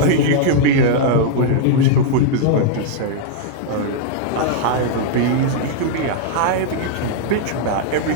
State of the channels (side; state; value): both; different; correlation -0.01